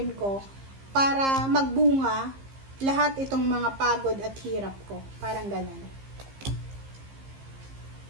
ko para magbunga lahat itong mga pagod at hirap ko. Parang ganun.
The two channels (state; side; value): late; left; 15 ms